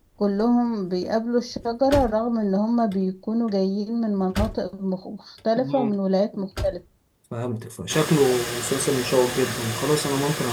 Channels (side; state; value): both; identical; correlation 1.00